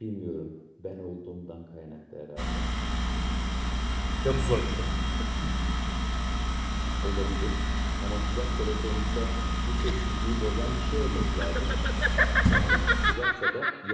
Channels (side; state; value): both; identical; correlation 1.00